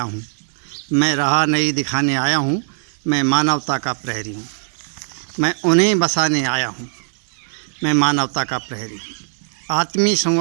हूँ। मैं राह नहीं दिखाने आया हूँ। मैं मानवता का प्रहरी हूँ, मैं उन्हें बसाने आया हूँ। मैं मानवता का प्रहरी हूँ, आत्मीय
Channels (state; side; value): silent; left; digital silence